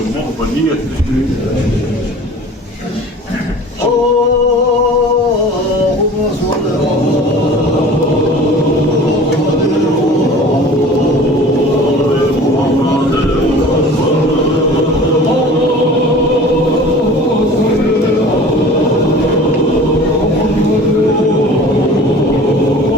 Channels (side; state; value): both; normal; correlation 0.43